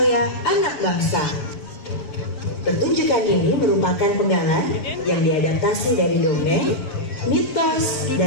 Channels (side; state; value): right; late; 7.2 ms